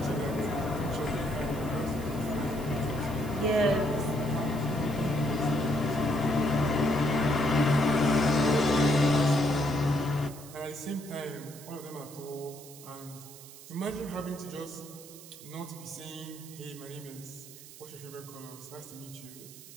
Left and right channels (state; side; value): noise; right; hiss, 17 dB below the sound